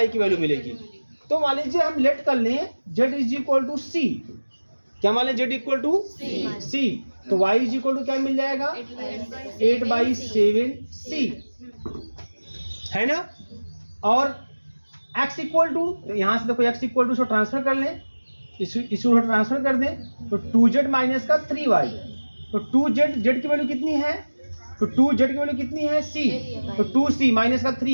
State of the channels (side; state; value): both; inverted; correlation -1.00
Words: की वैल्यू मिलेगी। तो मान लीजिए हम लेट कर लें जेड इज इक्वल टू सी, क्या मान लें जेड इक्वल टू सी, तो वाई इज इक्वल टू क्या मिल जाएगा 8/7 सी, है ना। और x इक्वल टू, तो यहाँ से देखो x इक्वल टू इसको ट्रांसफर कर लें, इसको ट्रांसफर कर दें तो 2z माइनस का 3y, तो 2z जेड की वैल्यू कितनी है, तो 2z की वैल्यू कितनी है c, तो 2c माइनस का